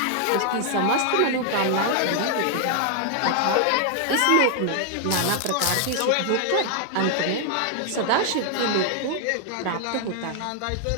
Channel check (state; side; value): different; both; correlation 0.00